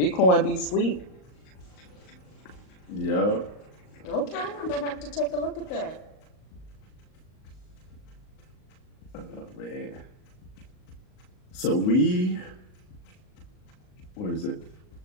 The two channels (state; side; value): late; right; 38 ms